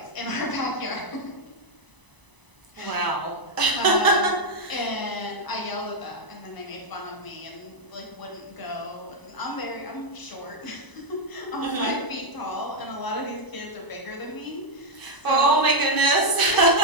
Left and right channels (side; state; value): right; late; 1.0 ms